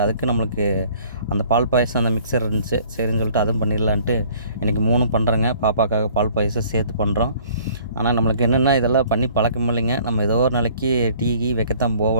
அதுக்கு நம்மளுக்கு அந்த பால் பாயசம் அந்த மிக்சர் இருந்துச்சு, சரின்னு சொல்லிட்டு அதுவும் பண்ணிடலான்ட்டு இன்றைக்கி 3ம் பண்ணுறேங்க. பாப்பாக்காக பால் பாயசம் சேர்த்து பண்ணுறோம். ஆனால் நம்மளுக்கு என்னென்னா இதெல்லாம் பண்ணி பழக்கம் இல்லைங்க. நம்ம ஏதோ ஒரு நாளைக்கு டீ வைக்கத்தான்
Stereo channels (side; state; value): both; inverted; correlation -0.55